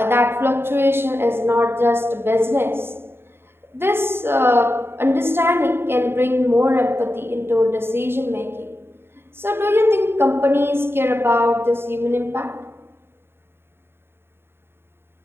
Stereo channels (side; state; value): left; late; 0.11 ms